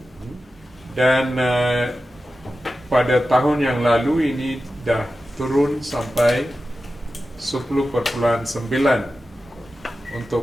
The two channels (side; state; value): both; normal; correlation 0.93